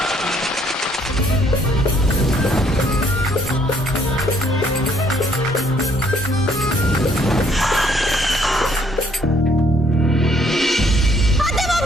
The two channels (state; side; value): normal; both; correlation 0.65